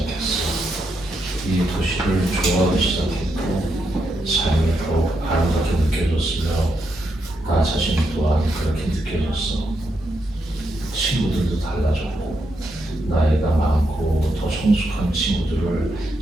이 도시를 좋아하기 시작했고 삶이 더욱 아름답게 느껴졌으며 나 자신 또한 그렇게 느껴졌어. 친구들도 달라졌고 나이가 많고 더 성숙한 친구들을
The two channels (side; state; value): both; normal; correlation 0.82